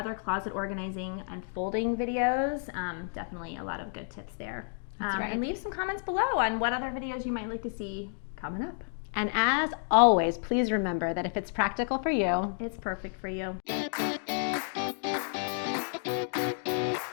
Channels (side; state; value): right; silent; 57 dB below the other